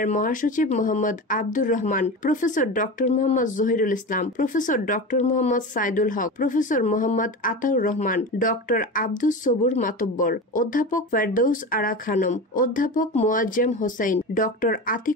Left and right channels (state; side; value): normal; both; correlation 0.27